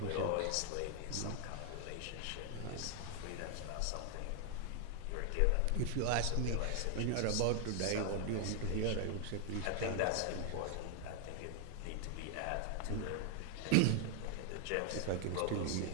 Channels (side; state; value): both; different; correlation 0.00